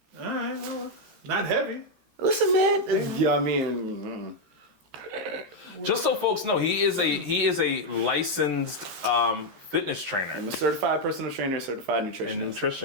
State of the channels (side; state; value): left; late; 13 ms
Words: All right, well, not heavy. Listen, man. Yeah, I mean, Just so folks know, he is a licensed fitness trainer I'm a certified personal trainer, certified and nutritionist.